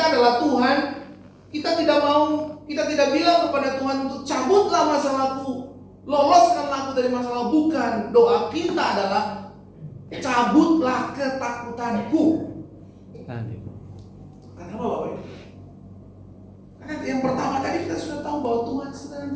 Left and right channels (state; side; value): identical; both; correlation 1.00